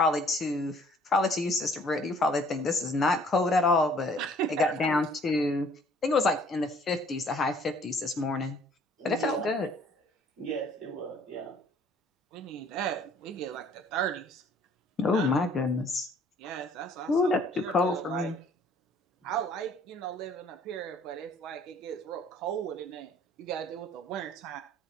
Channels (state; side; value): normal; both; correlation 0.57